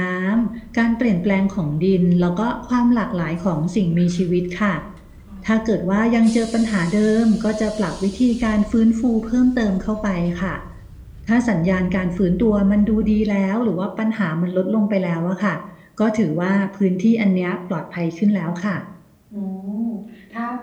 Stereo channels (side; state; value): both; identical; correlation 1.00